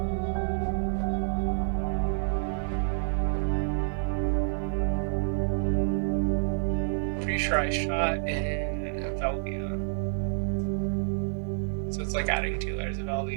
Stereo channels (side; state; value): left; silent; digital silence